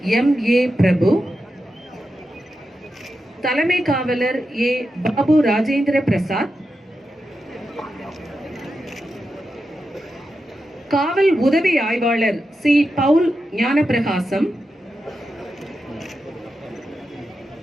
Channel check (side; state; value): both; normal; correlation 0.89